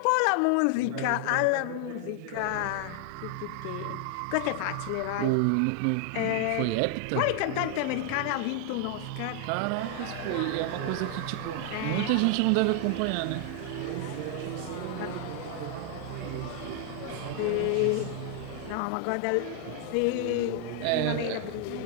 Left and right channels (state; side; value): different; both; correlation 0.00